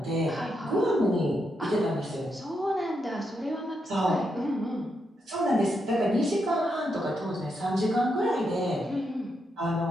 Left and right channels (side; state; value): both; normal; correlation 0.82